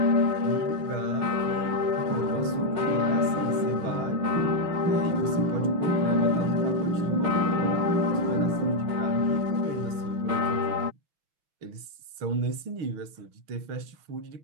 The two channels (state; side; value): late; left; 6.4 ms